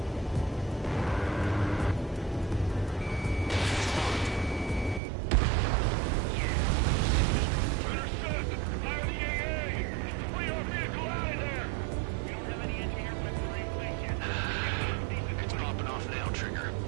It's popping off now, Trigger.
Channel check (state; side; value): drops out; left; at 5.0 s